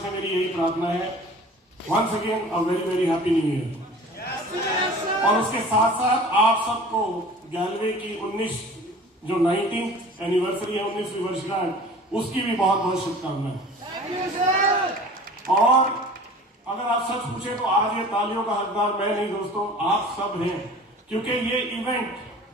मेरी यही प्रार्थना है। Once again a very very happy new year. और उसके साथ साथ आप सबको गैलवे की 19th एनिवर्सरी है, 19वीं वर्षगांठ, उसकी भी बहुत बहुत शुभकामनाएं। और अगर आप सच पूछे तो आज ये तालियों का हकदार मैं नहीं दोस्तों, आप सब हैं। क्योंकि ये इवेंट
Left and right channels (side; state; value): both; normal; correlation 0.43